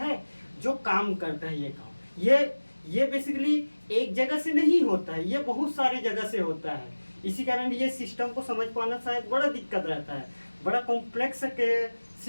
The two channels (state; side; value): inverted; both; correlation -1.00